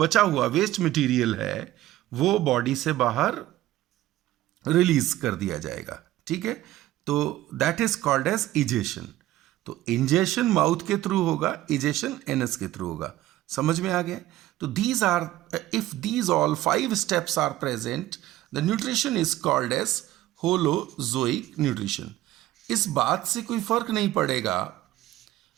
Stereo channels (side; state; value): left; quieter; 15.2 dB